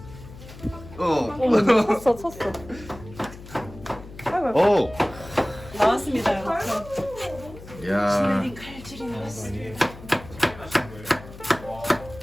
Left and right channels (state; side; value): noise; left; hum, 16 dB below the sound